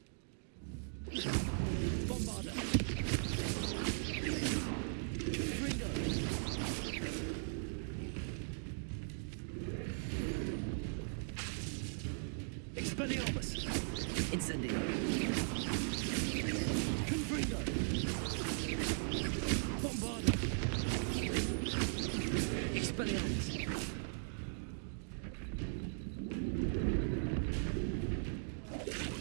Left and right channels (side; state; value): left; silent; digital silence